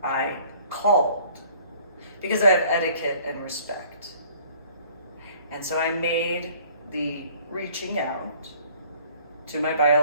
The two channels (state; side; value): inverted; both; correlation -0.55